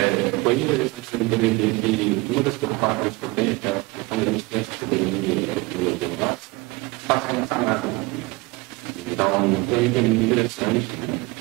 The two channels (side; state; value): left; quieter; 23.8 dB